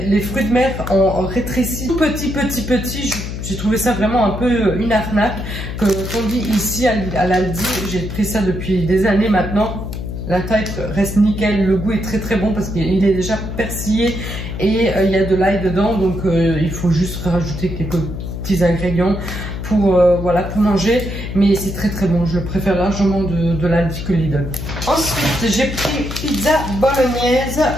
fruits de mer en rétréci petit. J'ai trouvé ça vraiment un peu une arnaque. Qu'on dit ici à l'Aldi, j'ai pris ça depuis des années maintenant. La taille reste nickel, le goût est très très bon parce qu'il est déjà persillé et il y a de l'ail dedans, donc il faut juste rajouter quelques petits ingrédients pour voilà, pour manger, mais c'est très très bon. Je préfère largement de l'Aldi que Lidl. Ensuite j'ai pris pizza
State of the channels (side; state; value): left; noise; hum, 6 dB below the sound